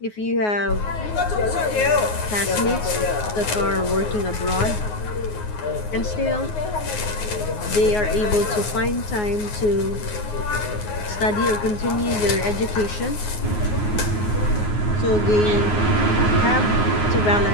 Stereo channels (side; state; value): right; late; 9.5 ms